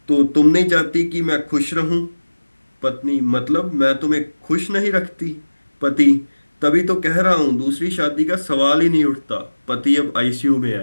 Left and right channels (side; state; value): both; inverted; correlation -1.00